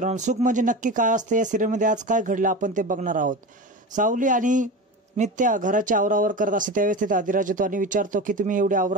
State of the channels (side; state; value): both; normal; correlation 0.27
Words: सुख म्हणजे नक्की काय असते या सिरियलमध्ये आज काय घडलं आपण ते बघणार आहोत। सावली आणि नित्या घराची आवरावर करत असते त्यावेळेस तिथे आदिराज येतो आणि विचारतो की तुम्ही एवढी